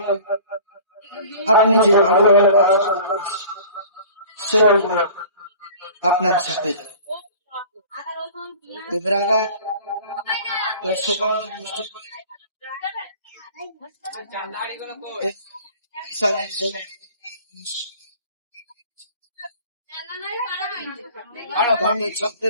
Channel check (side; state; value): both; inverted; correlation -0.44